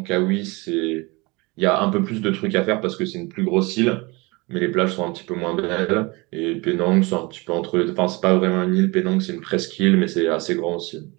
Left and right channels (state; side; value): quieter; left; 25.7 dB